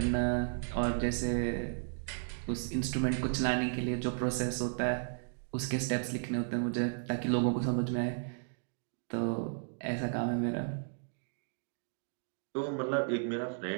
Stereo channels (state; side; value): silent; left; digital silence